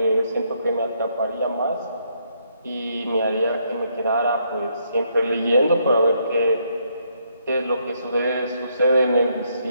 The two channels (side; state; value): both; inverted; correlation -0.73